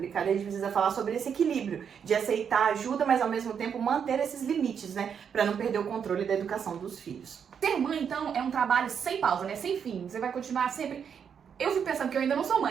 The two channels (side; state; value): left; quieter; 7.4 dB